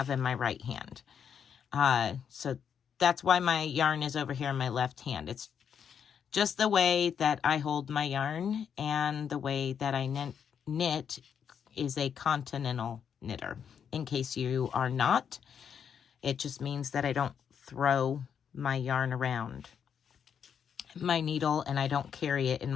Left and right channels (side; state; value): right; quieter; 7.7 dB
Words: in my right hand. So that's why my yarn is over here in my left hand. It's just the way that I hold my yarn, and the way that I knit is a continental knitter. In case you are not, it just means that I don't throw my yarn around my needle, and I don't carry it in